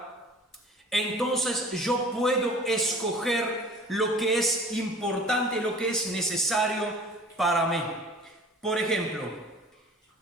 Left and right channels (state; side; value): normal; both; correlation 0.45